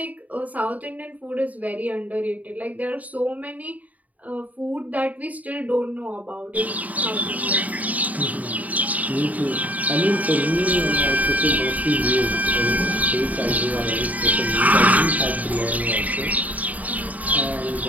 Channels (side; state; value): left; late; 0.073 ms